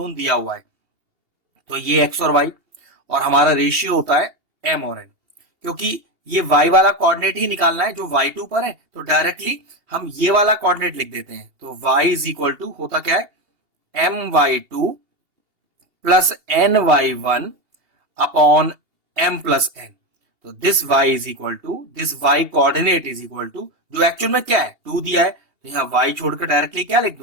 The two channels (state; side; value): late; left; 2.8 ms